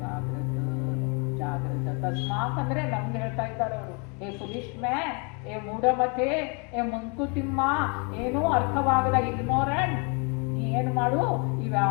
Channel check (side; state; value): right; quieter; 34.4 dB